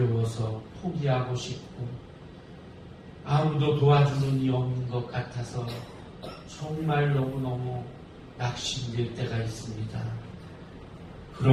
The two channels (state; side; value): identical; both; correlation 1.00